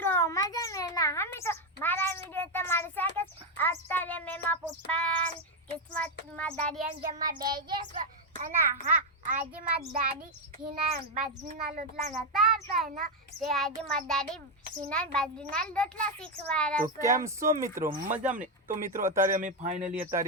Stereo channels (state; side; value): normal; both; correlation 0.05